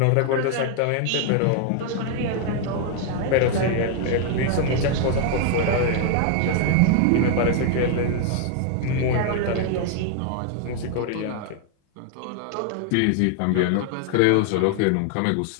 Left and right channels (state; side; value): different; both; correlation 0.00